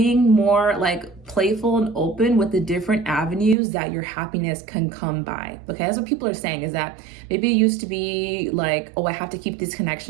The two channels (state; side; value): drops out; left; at 3.6 s